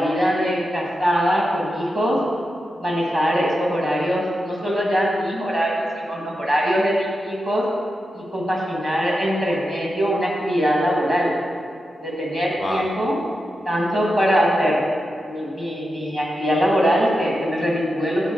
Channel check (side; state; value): both; normal; correlation 0.89